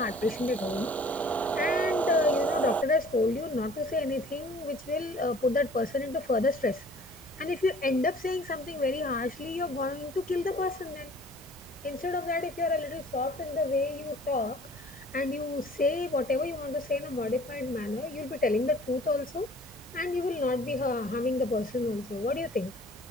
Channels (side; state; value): both; normal; correlation 0.51